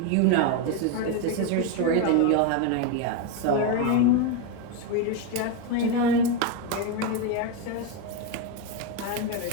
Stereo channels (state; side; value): different; both; correlation 0.03